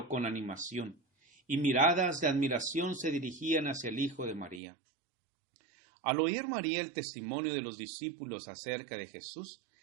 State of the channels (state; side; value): drops out; left; at 4.6 s